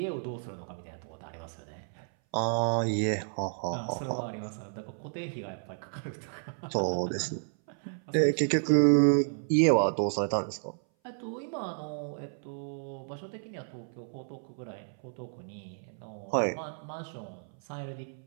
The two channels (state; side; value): silent; left; 57 dB below the other